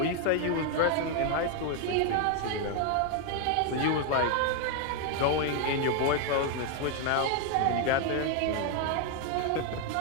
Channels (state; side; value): different; both; correlation 0.01